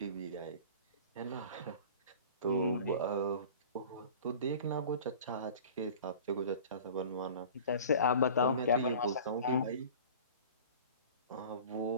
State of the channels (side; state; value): both; inverted; correlation -0.41